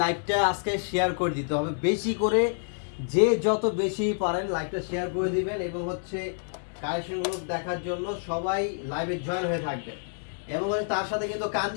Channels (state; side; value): silent; right; digital silence